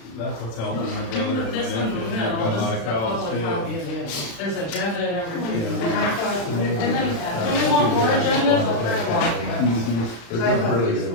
that's what's helping my brother and my This one, nephew. no, They've got a this lot is of the cows public too. copy again. There's agenda and everything. Yeah. And I thought, and then, do you want more agendas? I'll print them off. Mhm. They're doing really good.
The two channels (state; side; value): late; right; 35 ms